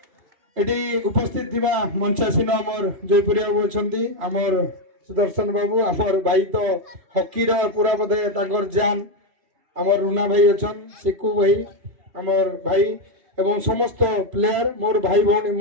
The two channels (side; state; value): left; late; 3.0 ms